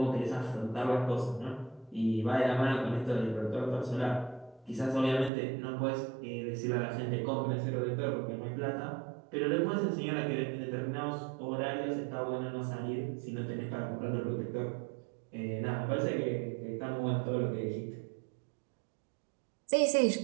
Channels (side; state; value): left; drops out; at 5.3 s